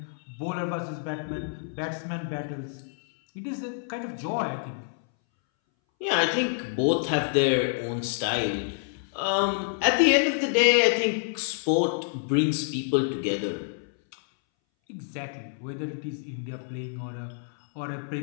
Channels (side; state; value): right; silent; 60 dB below the other